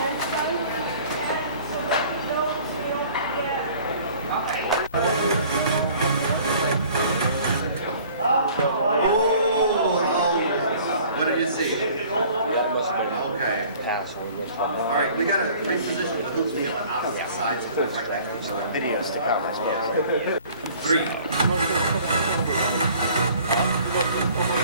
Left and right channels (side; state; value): both; inverted; correlation -0.51